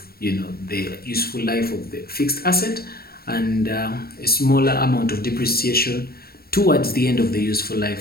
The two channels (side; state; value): right; late; 0.44 ms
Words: the useful life of the fixed asset, and a smaller amount of depreciation towards the end of the useful